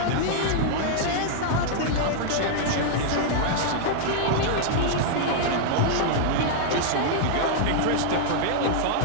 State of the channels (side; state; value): both; different; correlation -0.01